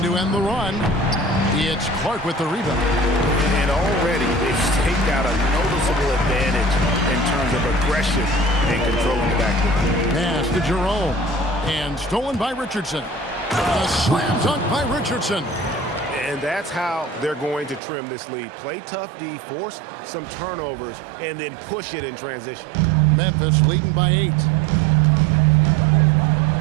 to end the run. It's Clark with the rebound. And already they've staked out a noticeable advantage in terms of aggression and controlling the backcourt. Pass to Jerome. And stolen by Richardson. A slam dunk by Richardson. And that's how they're going to trim this lead. Play tough D, force some turnovers, and then push it in transition. Memphis leading by 8.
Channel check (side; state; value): left; drops out; at 17.8 s